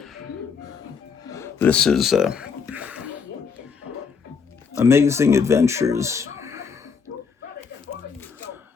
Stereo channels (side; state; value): right; quieter; 5.8 dB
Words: This is Amazing Adventures,